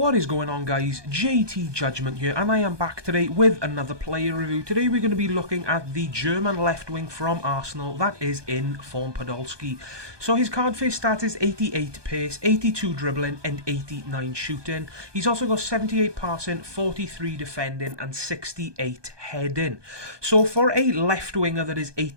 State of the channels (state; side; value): late; left; 1.2 ms